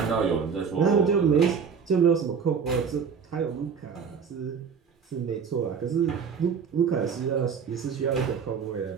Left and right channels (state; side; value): quieter; left; 6.4 dB